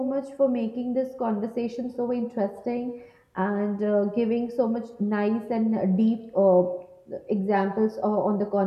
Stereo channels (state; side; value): identical; both; correlation 1.00